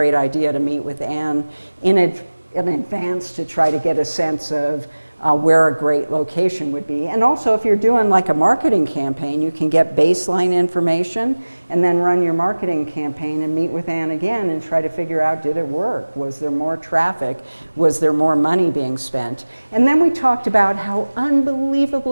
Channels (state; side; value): inverted; both; correlation -1.00